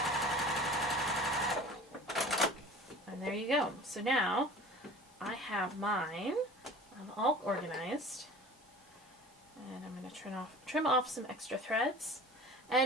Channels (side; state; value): both; normal; correlation 0.41